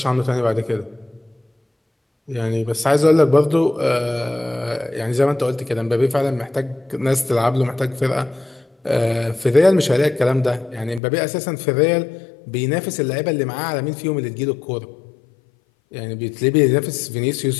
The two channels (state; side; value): drops out; right; at 11.0 s